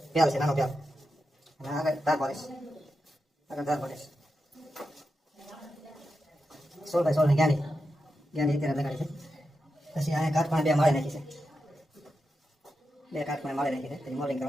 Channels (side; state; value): both; normal; correlation 0.88